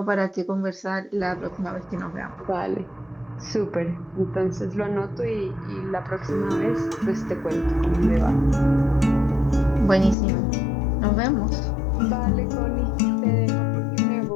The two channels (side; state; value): right; drops out; at 10.2 s